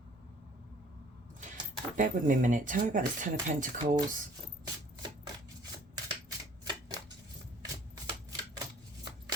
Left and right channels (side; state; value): both; normal; correlation 0.55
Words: Bear with me a minute. Tell me about this 10 of Pentacles.